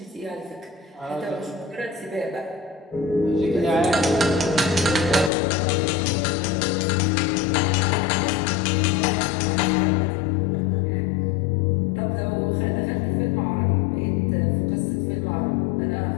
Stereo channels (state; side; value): drops out; right; at 5.3 s